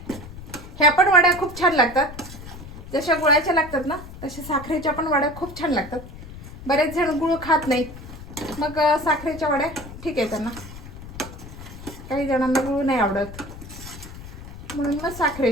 ह्या पण वड्या खूप छान लागतात. जशा गुळाच्या लागतात ना तशा साखरेच्या पण वड्या खूप छान लागतात. बरेच जण गुळ खात नाहीत, मग साखरेच्या वड्या ठीक आहे त्यांना. काही जणांना गुळ नाही आवडत म्हणून मग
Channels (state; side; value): noise; left; rumble, 14 dB below the sound